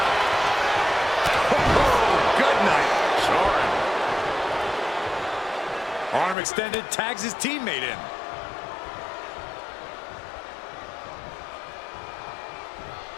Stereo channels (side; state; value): right; drops out; at 6.4 s